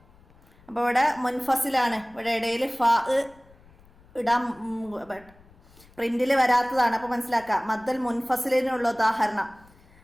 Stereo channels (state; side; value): noise; left; rumble, 27 dB below the sound